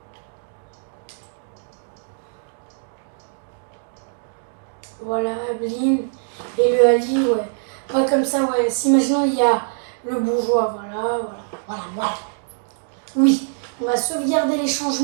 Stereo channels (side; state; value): left; silent; digital silence